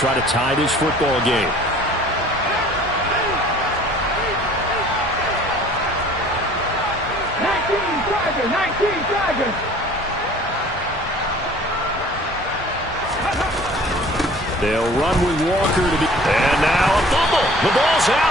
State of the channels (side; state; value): both; normal; correlation 0.50